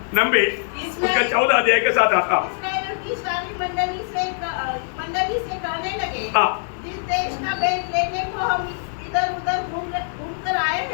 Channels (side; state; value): right; silent; digital silence